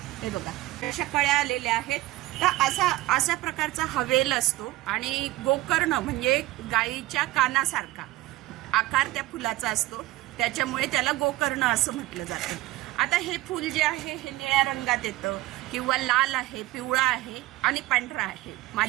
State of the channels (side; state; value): left; quieter; 17.7 dB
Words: हे बघा, अशा कळ्या आलेल्या आहेत. तर अशा प्रकारचा हा वेल असतो आणि गोकर्ण म्हणजे गायीच्या कानासारखा आकार त्या फुलाचा असतो. त्याच्यामुळे त्याला गोकर्ण असं म्हटलं जातं. आता हे फूल जे आहे हे निळ्या रंगात येतं किंवा लाल आहे, पिवळा आहे आणि पांढरा आहे.